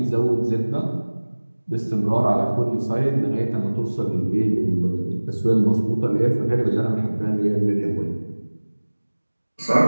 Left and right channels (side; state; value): both; inverted; correlation -1.00